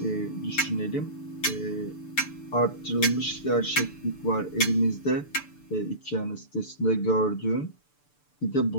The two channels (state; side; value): late; right; 6.8 ms